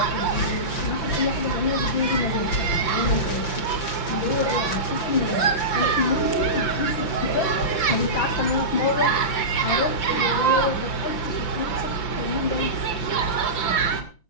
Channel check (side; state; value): right; late; 5.9 ms